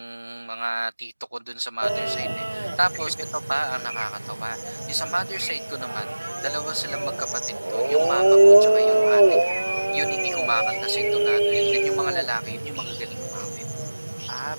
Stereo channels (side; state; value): both; inverted; correlation -1.00